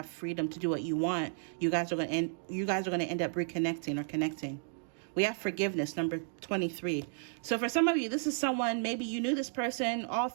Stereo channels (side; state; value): left; silent; digital silence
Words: freedom to do what you want. You guys are going to end up reconnecting or connecting. We have forgiveness, number 23. So for some of you, this is someone, maybe you knew this person all